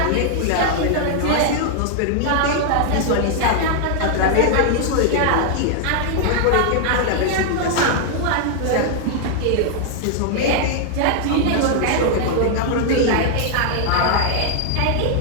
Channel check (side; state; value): both; different; correlation 0.00